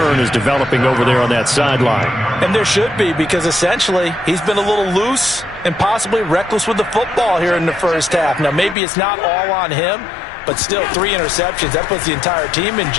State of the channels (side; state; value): right; drops out; at 8.8 s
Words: is developing over there on that sideline. And there should be, because essentially he's been a little loose and possibly reckless with the football here in the first half. Now, maybe it's not all on him, but still 3 interceptions. That puts the entire team in